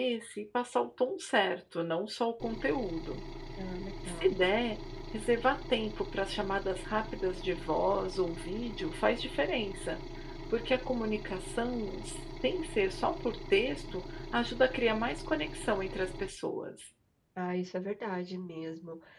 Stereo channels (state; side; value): identical; both; correlation 1.00